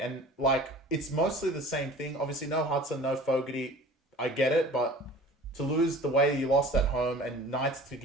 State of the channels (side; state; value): both; normal; correlation 0.43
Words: And, like, it's mostly the same thing. Obviously, no Hudson, no Fogarty. I get it, but to lose the way you lost at home and Knights to